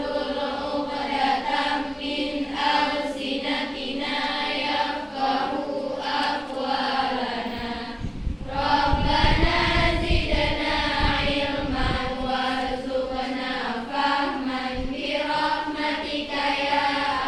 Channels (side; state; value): both; identical; correlation 1.00